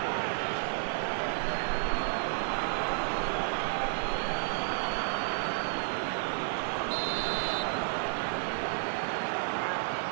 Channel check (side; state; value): left; silent; digital silence